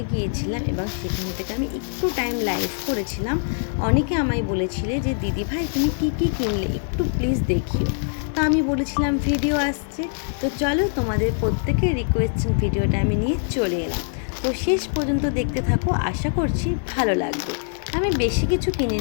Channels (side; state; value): right; silent; digital silence